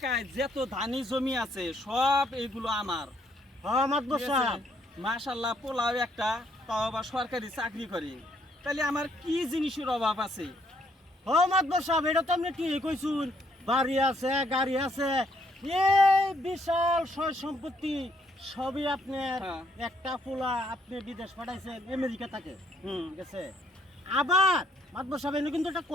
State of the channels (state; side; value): normal; both; correlation 0.69